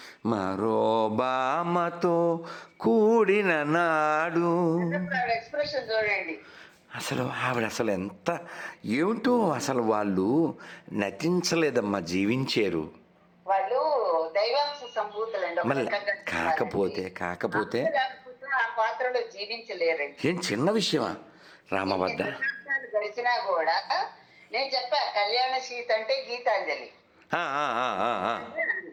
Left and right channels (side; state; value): both; identical; correlation 1.00